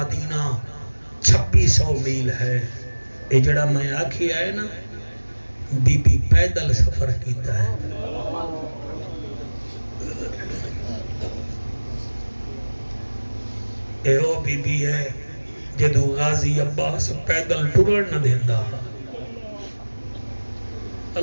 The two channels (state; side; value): inverted; both; correlation -1.00